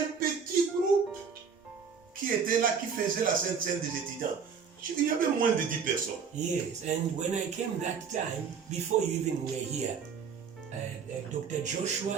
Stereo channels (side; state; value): left; quieter; 6.3 dB